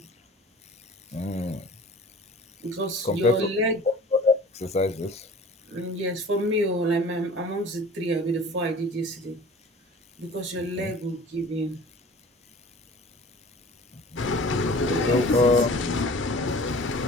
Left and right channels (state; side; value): normal; both; correlation 0.44